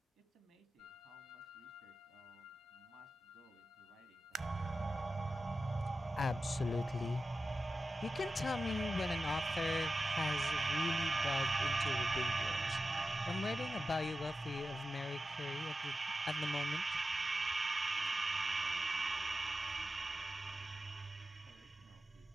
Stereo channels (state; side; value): normal; both; correlation 0.93